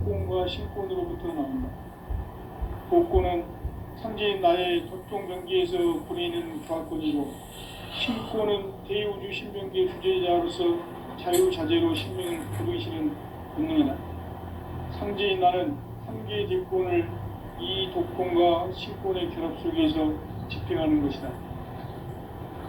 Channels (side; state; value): both; identical; correlation 1.00